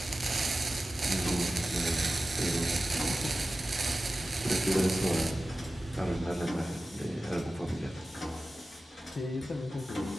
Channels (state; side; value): normal; both; correlation 0.95